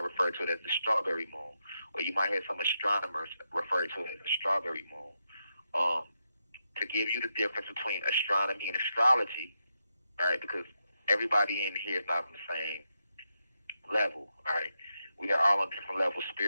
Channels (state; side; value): inverted; both; correlation -0.85